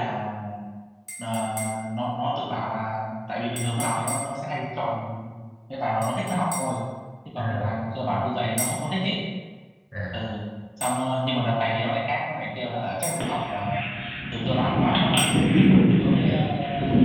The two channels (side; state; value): both; identical; correlation 1.00